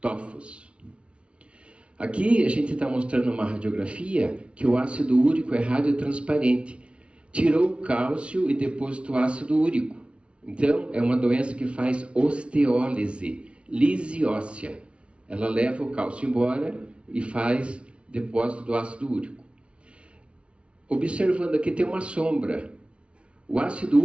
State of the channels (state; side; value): late; left; 0.059 ms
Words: Aqui a gente está mostrando uma radiografia que o ácido úrico é radiotransparente. Tirou o cálcio e depositou ácido úrico. Então, é uma doença que faz osteólise, lise óssea. Ela leva o cálcio embora e faz depósito do ácido úrico. Observando aqui tem uma sombra. O ácido